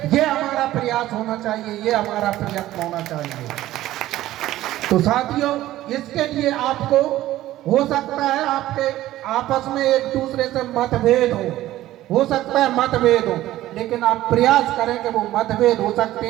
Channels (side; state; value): left; quieter; 14.9 dB